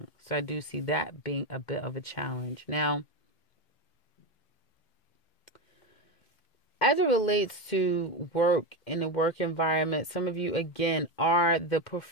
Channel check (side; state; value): right; late; 2.2 ms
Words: So I do see that being a bit of a challenge. Now, as it relates to work in the work environment, some of you, again, are the